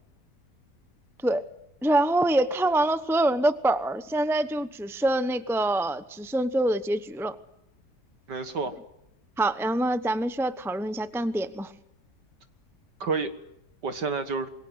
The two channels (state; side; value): normal; both; correlation 0.76